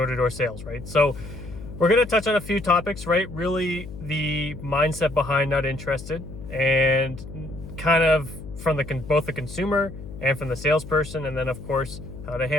sales, right? So we're going to touch on a few topics, right? Really the mindset behind not interested, and kind of from both the consumer and from the salesperson, and then of course how to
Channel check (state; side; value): noise; left; hum, 12 dB below the sound